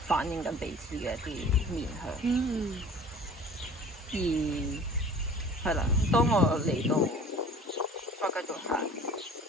反映緊彼此嘅一啲面向。而係啦，當我嚟到再繼續行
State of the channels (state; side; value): normal; both; correlation 0.45